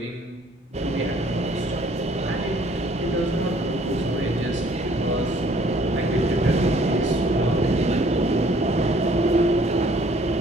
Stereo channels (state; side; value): normal; both; correlation 0.59